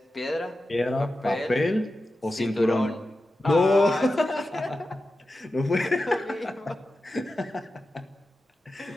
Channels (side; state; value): both; normal; correlation 0.92